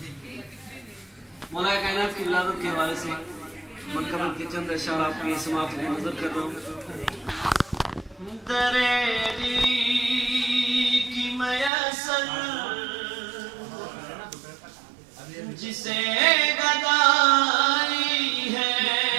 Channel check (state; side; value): drops out; left; at 11.7 s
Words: مولا کائنات کی ولادت کے حوالے سے منقبل کے چند اشعار آپ کی سماعت میں نظر کر رہا ہوں. دریری کی میسر جسے گدائی ہے.